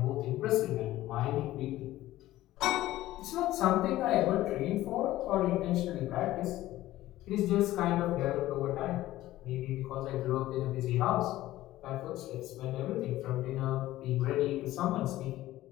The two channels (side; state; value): right; quieter; 15.5 dB